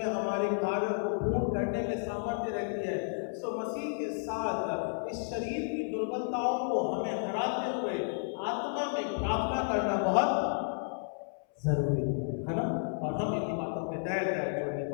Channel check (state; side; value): silent; right; 56 dB below the other